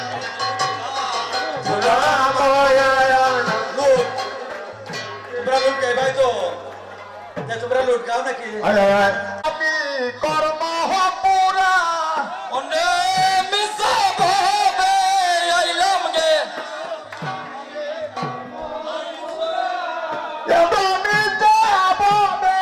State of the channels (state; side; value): identical; both; correlation 1.00